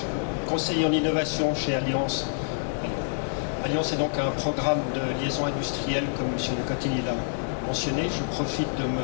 conseiller en innovation chez Alliance. Alliance est donc un programme de liaison industrielle, comme M. Lecotini l'a mentionné. Je profite de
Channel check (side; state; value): right; silent; digital silence